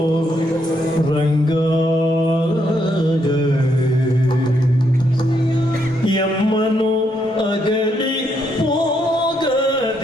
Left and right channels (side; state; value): both; normal; correlation 0.76